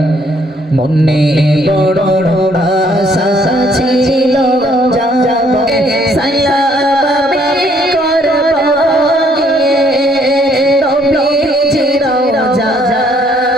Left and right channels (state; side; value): normal; both; correlation 0.65